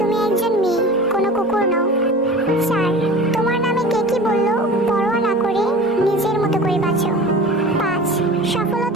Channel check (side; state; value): both; normal; correlation 0.37